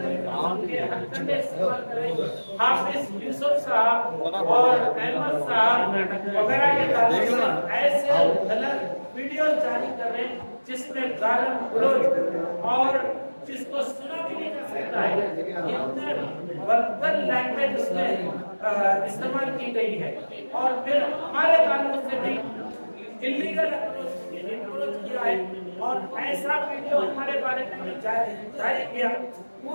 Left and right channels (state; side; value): inverted; both; correlation -1.00